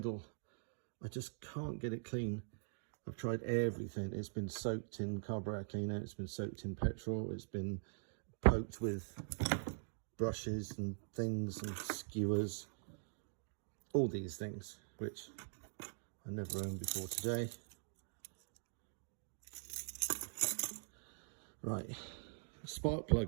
I just can't get it clean. I've tried everything. It's been soaked in carburetor cleaner. It's been soaked in petrol. It's been poked with brushes and things and skewers. All these things, which I never owned before today. Right, spark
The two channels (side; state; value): left; silent; digital silence